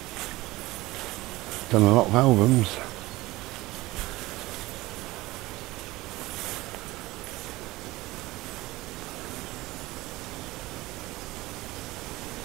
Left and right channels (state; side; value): quieter; left; 19.3 dB